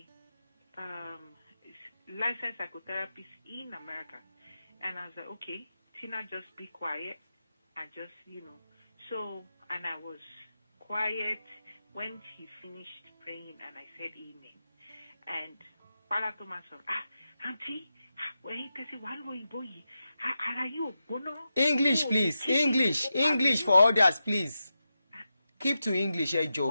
licensed psychotherapist in America, and I was like, okay, Tina, just be quiet and just, So, and I was quiet when he finished praying, and I said amen. And Father Thomas said, Auntie, when he said, English, please. English for others, please. Keep to English,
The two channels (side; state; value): both; inverted; correlation -0.89